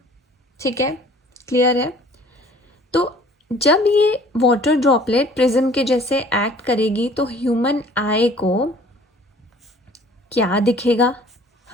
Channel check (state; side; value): normal; both; correlation 0.52